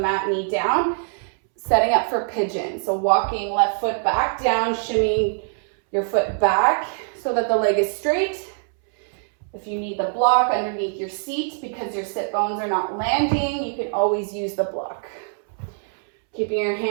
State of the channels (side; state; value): left; silent; 63 dB below the other